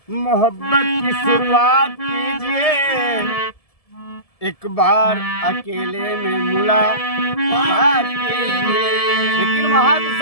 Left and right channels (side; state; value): right; late; 1.7 ms